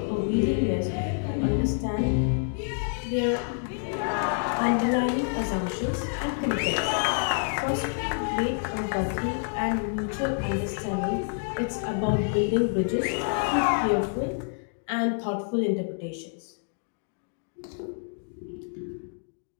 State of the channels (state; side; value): silent; right; digital silence